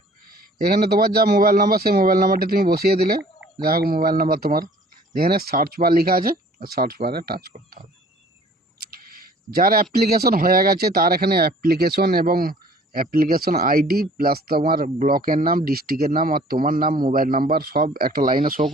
এখানে তোমার যা মোবাইল নাম্বার সেই মোবাইল নাম্বারটি তুমি বসিয়ে দিলে, যা হোক মোবাইল নাম্বার তোমার। এখানে সার্চ বার লেখা আছে, সার্চ বারে টাচ করতে হবে। যার অ্যাপ্লিকেশন হয়ে গেছে তার এখানে অ্যাপ্লিকেশন এবং অ্যাপ্লিকেশন আইডি প্লাস তোমার ব্লকের নাম, ডিস্ট্রিক্টের নাম আর তোমার নাম, মোবাইল নাম্বার সব একটা লাইনে শো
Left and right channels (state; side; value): normal; both; correlation 0.52